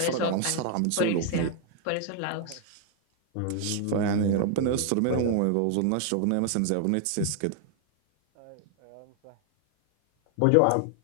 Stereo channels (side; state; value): both; different; correlation 0.00